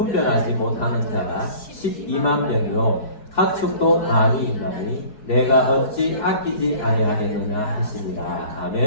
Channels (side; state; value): right; late; 4.7 ms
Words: 못하는 자가 12만 명이요 가축도 많이 있나니 내가 어찌 아끼지 아니하겠느냐 하시니라.